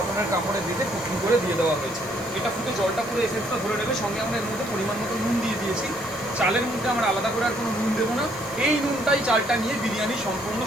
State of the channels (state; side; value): noise; left; hiss, 21 dB below the sound